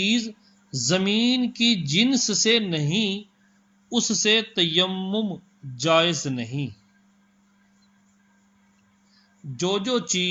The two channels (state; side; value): identical; both; correlation 1.00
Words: زمین کی جنس سے نہیں اس سے تیمم جائز نہیں۔ جو